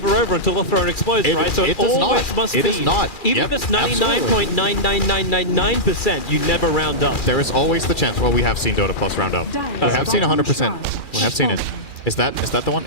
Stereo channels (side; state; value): right; late; 2.7 ms